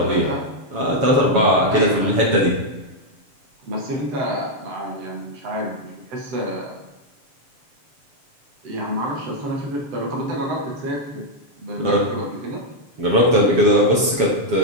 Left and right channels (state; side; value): late; left; 7.2 ms